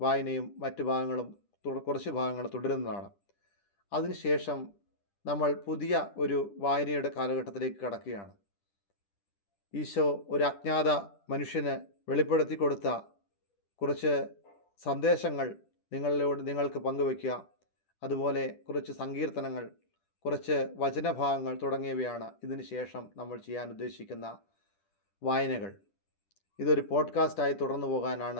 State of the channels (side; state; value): right; late; 10 ms